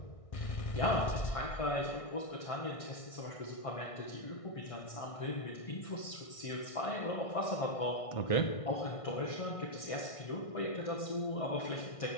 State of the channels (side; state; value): right; late; 1.6 ms